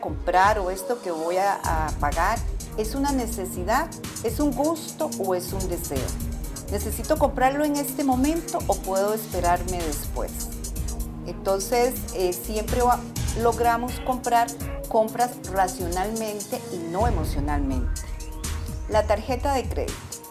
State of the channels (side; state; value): both; identical; correlation 1.00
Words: comprar o esto que voy a pagar es una necesidad, es un gusto o es un deseo? ¿Necesito comprarlo en este momento o puedo esperarme después? Entonces, siempre logramos comprar compras racionalmente y no emocionalmente. La tarjeta de crédito.